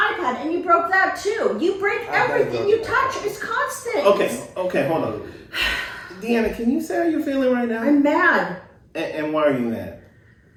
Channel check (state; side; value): identical; both; correlation 1.00